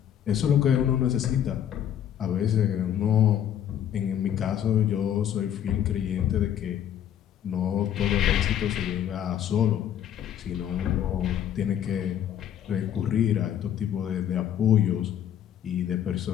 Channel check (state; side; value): quieter; right; 10.0 dB